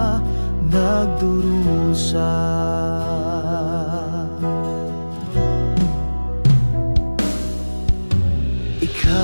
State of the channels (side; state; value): both; inverted; correlation -1.00